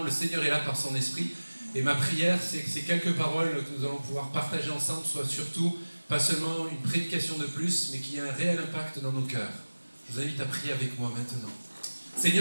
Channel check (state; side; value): inverted; both; correlation -1.00